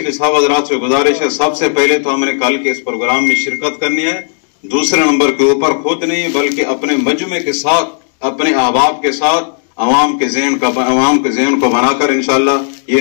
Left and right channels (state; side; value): silent; right; digital silence